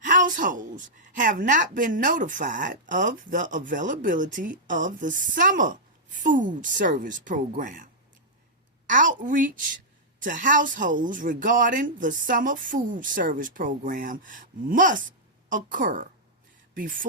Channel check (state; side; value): normal; both; correlation -0.09